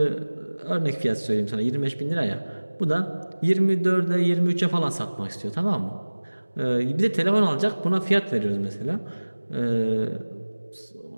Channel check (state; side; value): inverted; both; correlation -1.00